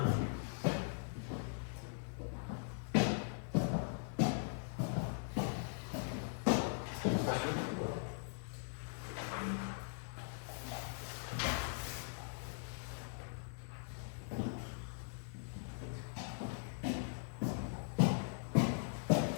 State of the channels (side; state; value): right; silent; digital silence